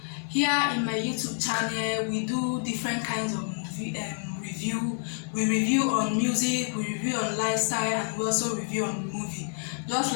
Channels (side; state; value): right; silent; 56 dB below the other